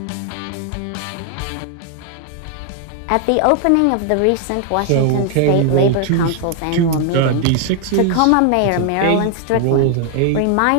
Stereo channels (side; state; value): both; different; correlation 0.00